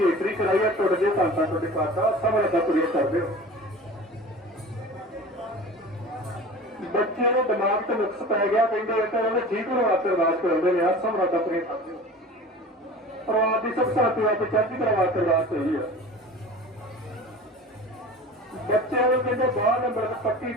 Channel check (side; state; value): both; normal; correlation 0.37